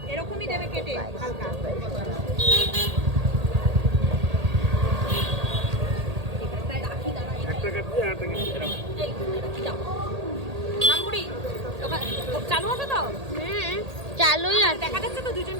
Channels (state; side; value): late; left; 1.8 ms